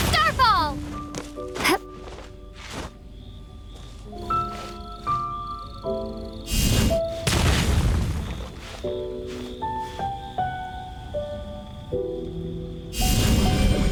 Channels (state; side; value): identical; both; correlation 1.00